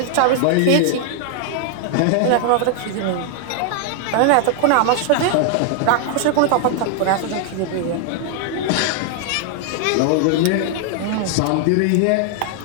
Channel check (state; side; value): different; both; correlation 0.00